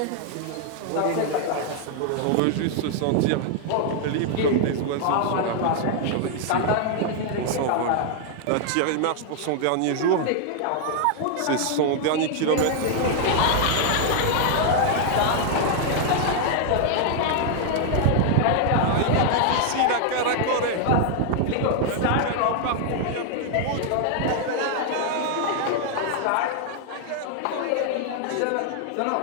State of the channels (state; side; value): different; both; correlation 0.00